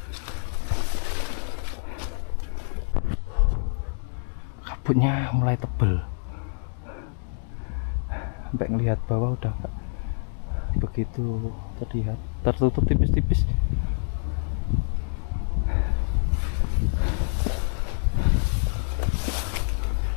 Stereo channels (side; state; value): right; silent; digital silence